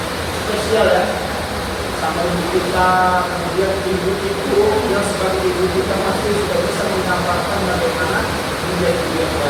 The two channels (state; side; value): identical; both; correlation 1.00